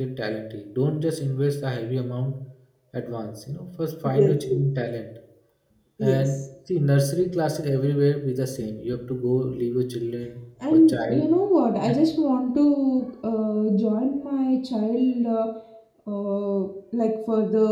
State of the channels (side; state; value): both; identical; correlation 1.00